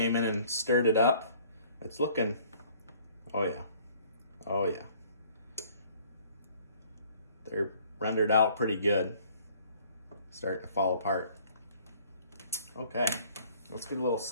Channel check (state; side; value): inverted; both; correlation -0.56